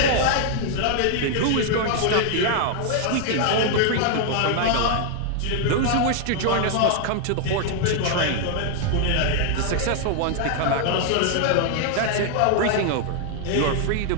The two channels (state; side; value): different; both; correlation 0.00